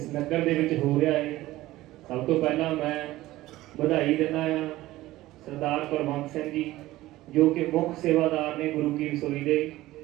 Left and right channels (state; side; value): quieter; left; 16.8 dB